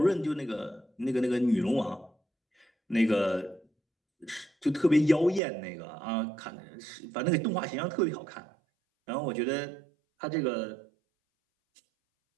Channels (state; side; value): drops out; left; at 5.4 s